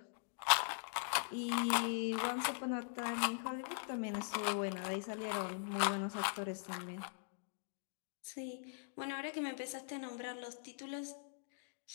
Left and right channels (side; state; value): right; silent; digital silence